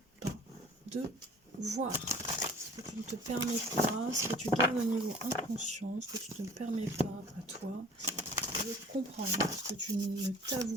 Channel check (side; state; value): both; normal; correlation 0.46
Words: pas de voir, ce que tu ne te permets pas, ce que tu gardes au niveau inconscient, ce que tu ne te permets pas à toi de comprendre, ce que tu ne